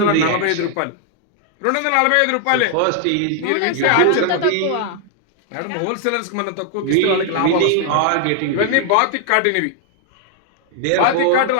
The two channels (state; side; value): different; both; correlation 0.00